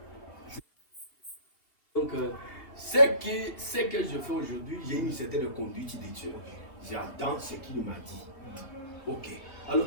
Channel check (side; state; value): right; late; 2.6 ms